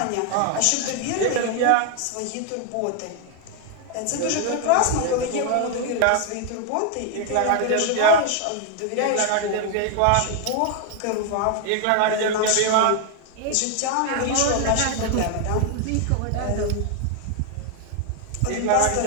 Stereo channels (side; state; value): both; different; correlation 0.00